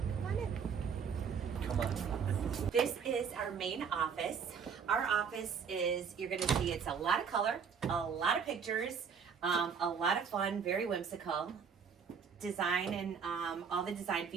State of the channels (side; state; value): left; quieter; 6.5 dB